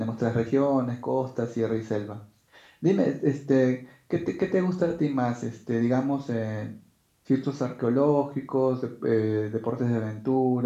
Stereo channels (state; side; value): identical; both; correlation 1.00